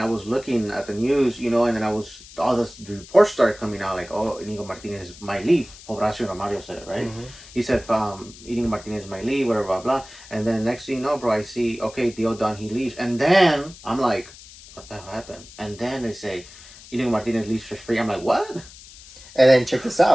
was looking at the news, you know, and then all the reports started coming out like, oh, Inigo Martinez might leave. Horacio Romario said it, right? Mm-hmm. He said, Inigo Martinez might leave, whatever, blah, blah. And then next thing you know, bro, I see, okay, deal done, he leaves. And then I'm like, what the hell happened? And then they say, Inigo Martinez leaves for free. I'm like, what? And then check this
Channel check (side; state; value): left; noise; hiss, 19 dB below the sound